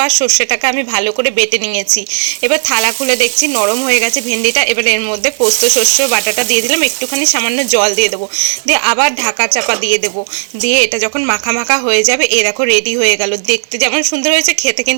আর সর্ষেটাকে আমি ভালো করে বেটে নিয়েছি। এবার থালা খুলে দেখছি নরম হয়ে গেছে ভেন্ডিটা। এবার এর মধ্যে পোস্ত সর্ষে বাটাটা দিয়ে দিলাম, একটুখানি সামান্য জল দিয়ে দেবো, দিয়ে আবার ঢাকা চাপা দিয়ে দেবো। দিয়ে এটা যখন মাখা মাখা হয়ে যাবে, এ দেখো রেডি হয়ে গেল। দেখতে যেমন সুন্দর হয়েছে, খেতে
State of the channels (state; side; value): silent; left; digital silence